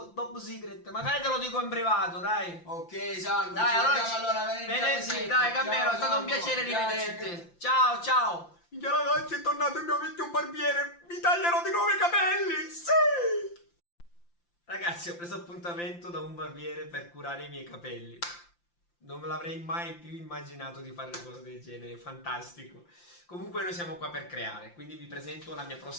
top secret. Magari te lo dico in privato, dai. Ok, Salvo. Dai, ci allora, vediamo allora venerdì alle venerdì, 7. dai, Carmelo, Ciao, è stato un Salvo. piacere Grazie, rivederti. Ciao, ciao. Minchia ragazzi, è tornato il mio vecchio barbiere. Mi taglierò di nuovo i capelli. Sì! Ragazzi, ho preso appuntamento da un barbiere per curare i miei capelli. Non me l'avrei mai più immaginato di fare una cosa del genere, fantastico. Comunque noi siamo qua per creare, quindi vi presento la mia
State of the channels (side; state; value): right; late; 5.8 ms